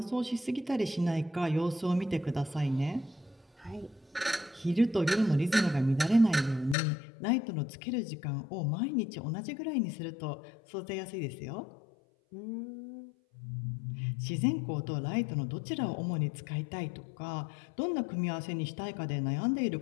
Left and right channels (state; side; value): drops out; right; at 6.8 s